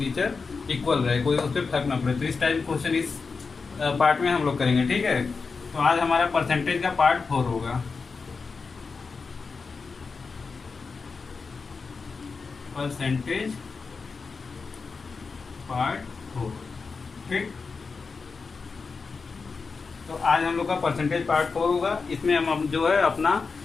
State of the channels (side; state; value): right; quieter; 4.7 dB